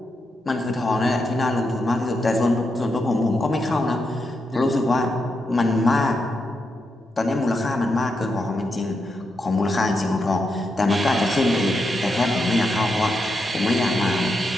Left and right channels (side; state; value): both; normal; correlation 0.84